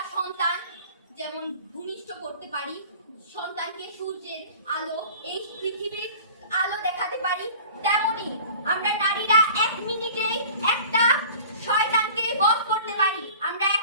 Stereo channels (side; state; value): both; inverted; correlation -0.43